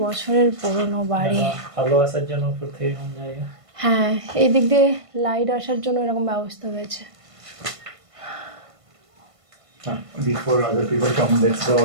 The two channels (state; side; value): late; left; 1.5 ms